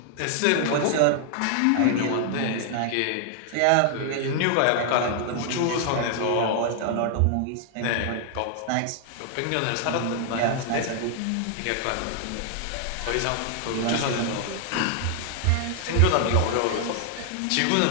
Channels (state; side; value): different; both; correlation 0.00